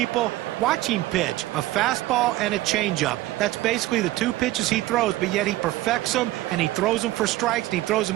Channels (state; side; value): quieter; left; 16.8 dB